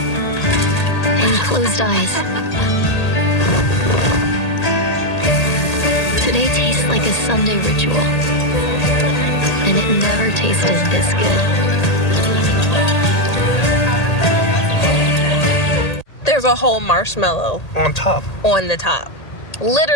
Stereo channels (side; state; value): right; late; 1.8 ms